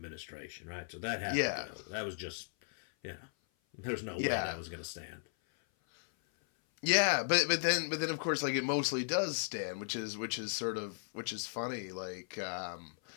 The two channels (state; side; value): silent; right; 54 dB below the other